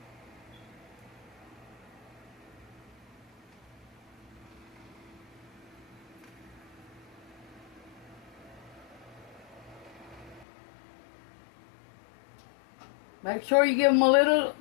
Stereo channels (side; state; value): right; drops out; at 10.5 s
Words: Make sure you give them a little